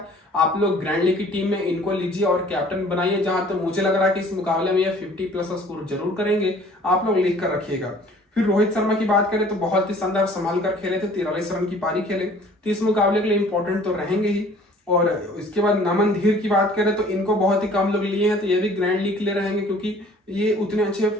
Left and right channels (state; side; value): normal; both; correlation 0.52